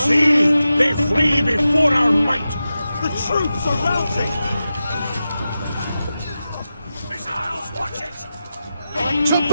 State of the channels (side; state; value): both; inverted; correlation -0.92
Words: they flee before our might! The troops are routing! Missiles, watch it! To